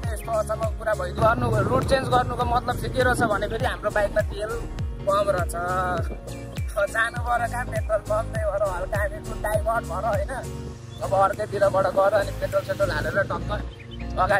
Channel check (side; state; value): both; identical; correlation 1.00